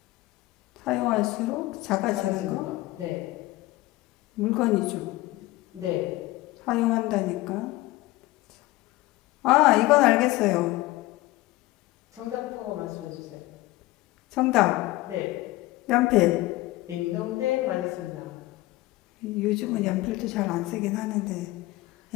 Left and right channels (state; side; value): quieter; right; 18.7 dB